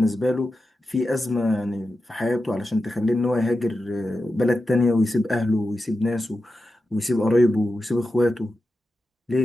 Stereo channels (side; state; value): both; normal; correlation 0.91